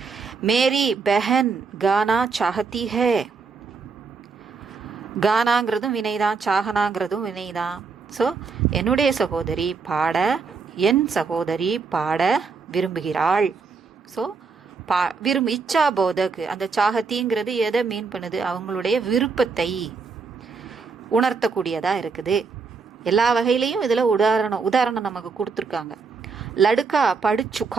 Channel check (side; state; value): left; quieter; 4.9 dB